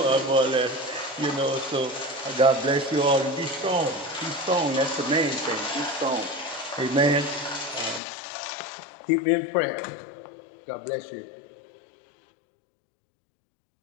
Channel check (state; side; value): drops out; right; at 8.0 s